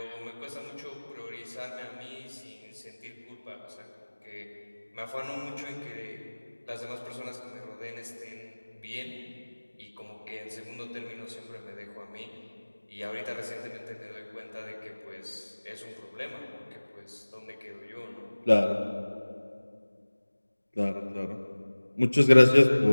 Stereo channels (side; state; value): both; inverted; correlation -1.00